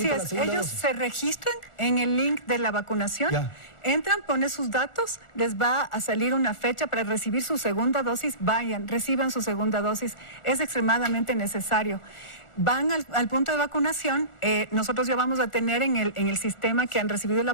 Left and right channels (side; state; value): right; late; 1.4 ms